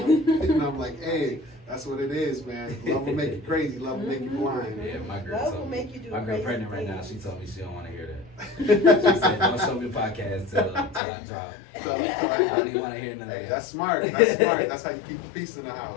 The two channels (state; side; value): drops out; right; at 11.0 s